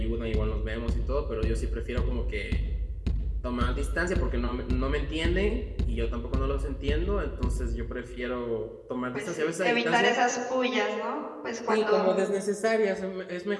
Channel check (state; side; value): identical; both; correlation 1.00